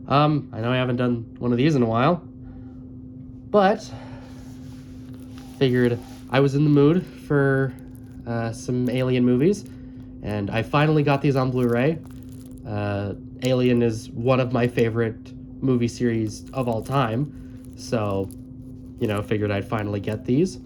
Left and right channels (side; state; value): both; identical; correlation 1.00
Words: I know I haven't done one of these in a while, but figured I was in the mood for some Alien movies, and I finally got these on Blu-ray. Alien is one of my favorite movie series of all time, so figured I'd finally get these.